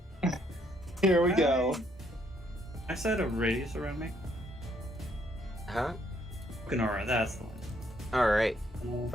Here we go. I said a radius around me. Huh? Ganora, that's the one. All right.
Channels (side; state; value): both; normal; correlation 0.70